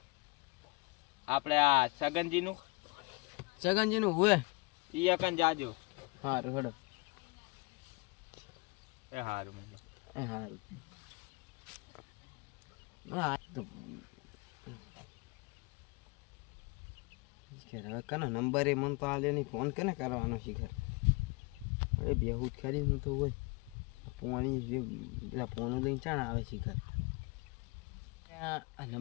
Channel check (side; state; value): right; quieter; 27.4 dB